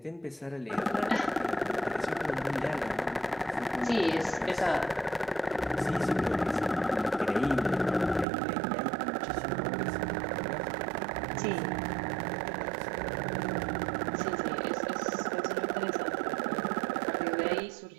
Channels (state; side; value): drops out; left; at 8.2 s